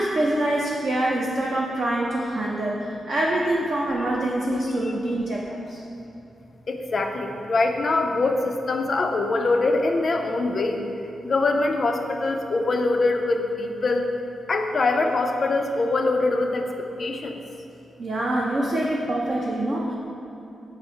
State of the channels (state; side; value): normal; both; correlation 0.87